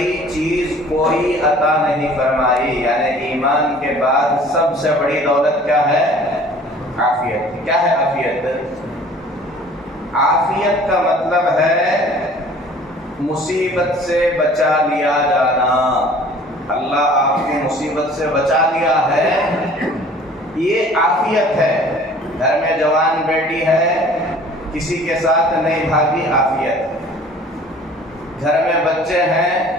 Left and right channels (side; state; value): both; normal; correlation 0.49